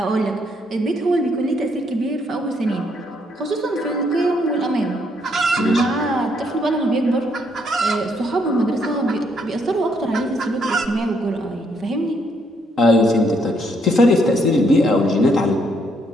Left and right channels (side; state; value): both; normal; correlation 0.72